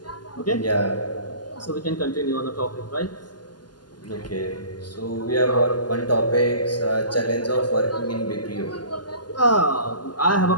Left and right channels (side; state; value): right; late; 0.70 ms